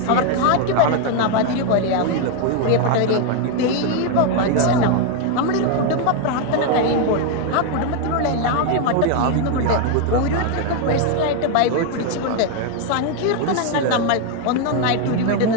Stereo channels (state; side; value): different; both; correlation 0.01